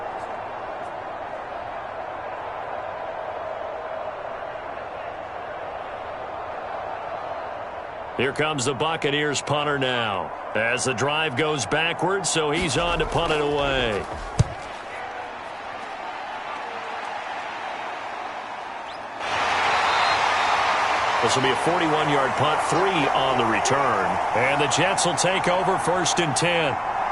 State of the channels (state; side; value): identical; both; correlation 1.00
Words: Here comes the Buccaneers punter now. As the drive goes backwards, so he's on to punt it away. This will be a 41-yard punt, 3 on the return. And the Jets will take over 1st and 10.